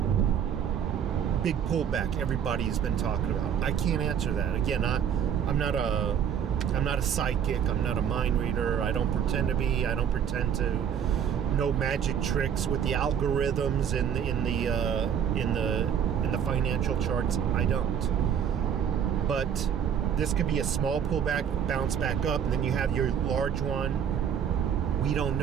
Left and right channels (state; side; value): quieter; left; 8.4 dB